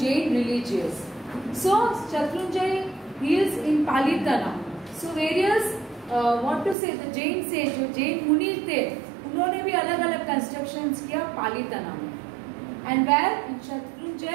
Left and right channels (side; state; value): left; drops out; at 6.8 s